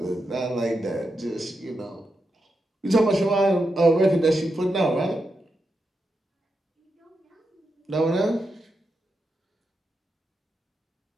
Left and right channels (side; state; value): both; normal; correlation 0.86